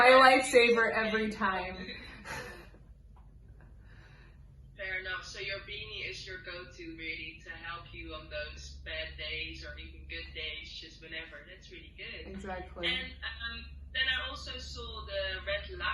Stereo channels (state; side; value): identical; both; correlation 1.00